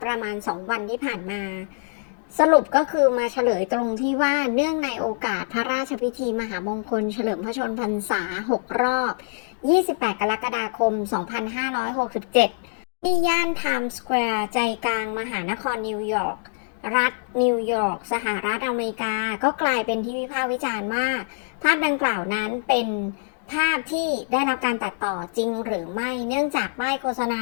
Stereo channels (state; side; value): silent; right; digital silence